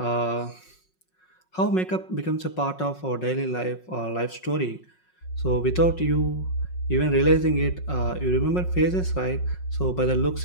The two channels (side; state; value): right; late; 5.5 ms